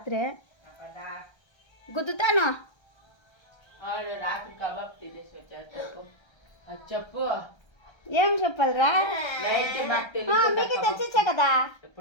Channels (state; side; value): late; right; 1.3 ms